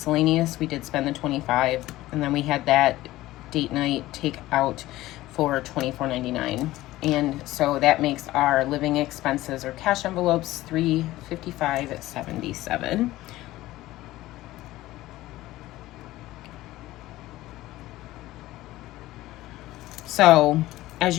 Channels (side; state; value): right; quieter; 16.7 dB